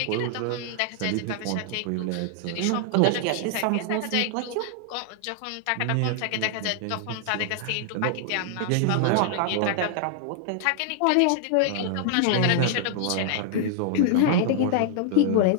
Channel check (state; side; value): different; both; correlation 0.00